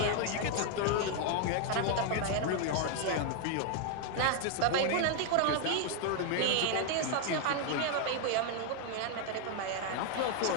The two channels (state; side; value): different; both; correlation 0.01